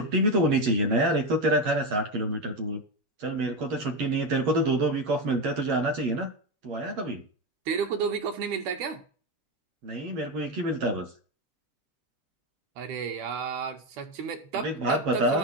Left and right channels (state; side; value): late; left; 9.6 ms